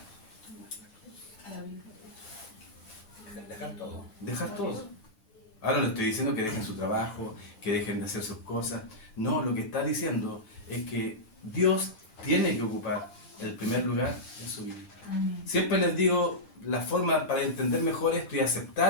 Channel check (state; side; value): late; right; 10 ms